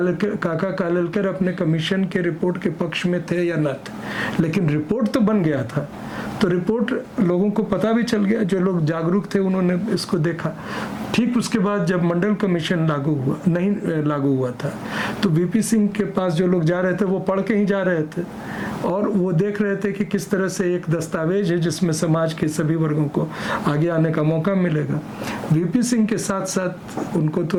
कालेलकर अपने कमीशन के रिपोर्ट के पक्ष में थे या न थे, लेकिन रिपोर्ट तो बन गया था। तो रिपोर्ट लोगों को पता भी चल गया, जो लोग जागरूक थे उन्होंने इसको देखा। ठीक उसके बाद जब मंडल कमीशन नहीं लागू हुआ था, तो वीपी सिंह के पास जो लोग जा रहे थे वो पढ़ के ही जा रहे थे, और वो देख रहे थे कि किस तरह से एक दस्तावेज है जिसमें समाज के सभी वर्गों को आगे आने का मौका मिलेगा। वीपी सिंह के साथ साथ उनको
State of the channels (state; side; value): identical; both; correlation 1.00